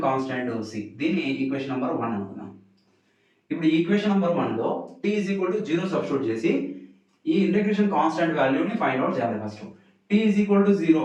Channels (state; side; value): identical; both; correlation 1.00